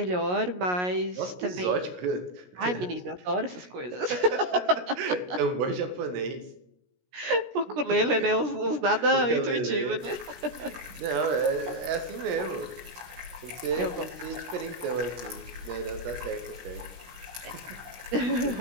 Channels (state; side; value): late; left; 17 ms